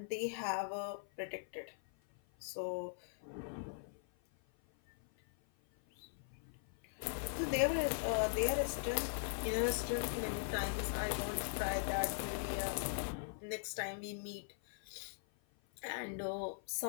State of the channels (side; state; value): right; silent; 51 dB below the other